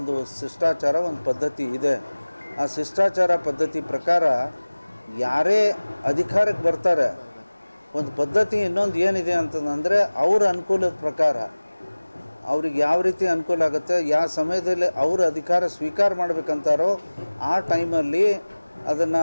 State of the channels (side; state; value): both; inverted; correlation -1.00